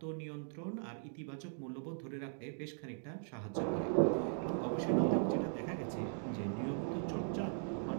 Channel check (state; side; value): silent; left; digital silence